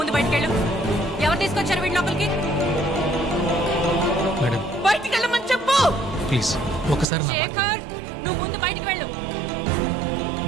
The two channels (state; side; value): drops out; left; at 7.1 s